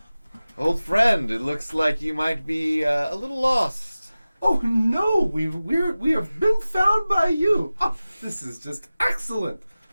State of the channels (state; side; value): inverted; both; correlation -0.97